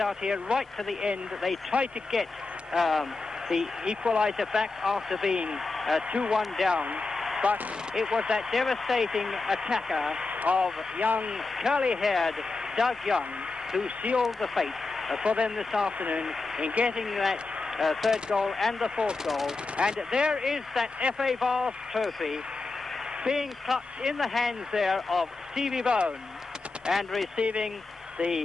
here right to the end. They tried to get the equaliser back after being 2-1 down. but it was that devastating attacker of young curly-haired Doug Young who sealed the fate for them this afternoon in getting that third goal and the fourth goal. And there is that FA Vase trophy being clutched in the hands there of Stevie Bone and receiving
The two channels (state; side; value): quieter; right; 3.7 dB